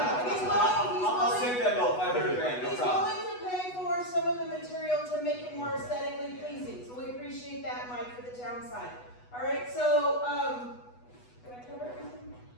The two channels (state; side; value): late; right; 8.1 ms